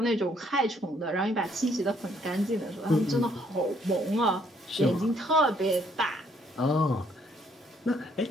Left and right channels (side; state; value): both; normal; correlation 0.67